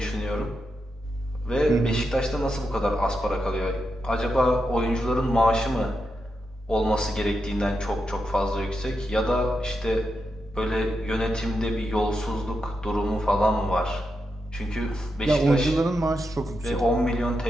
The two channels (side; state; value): both; normal; correlation 0.86